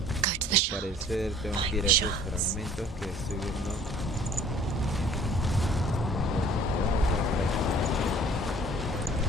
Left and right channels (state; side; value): normal; both; correlation 0.52